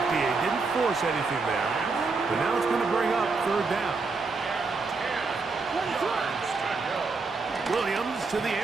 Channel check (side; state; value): left; quieter; 4.2 dB